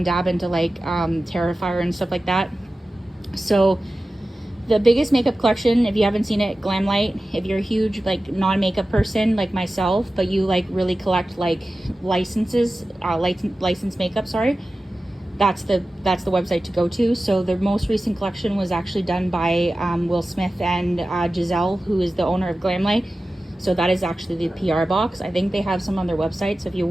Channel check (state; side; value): normal; both; correlation 0.95